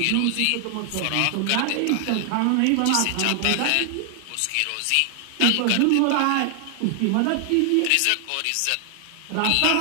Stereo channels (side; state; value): both; different; correlation 0.00